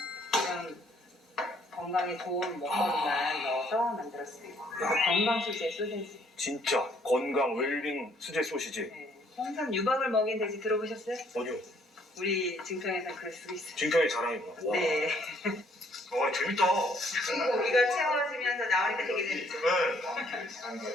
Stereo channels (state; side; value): normal; both; correlation 0.65